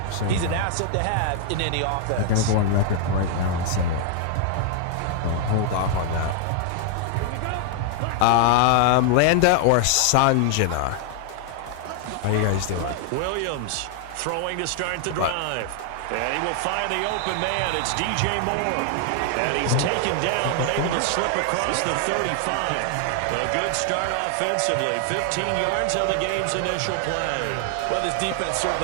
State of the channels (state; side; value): different; both; correlation 0.00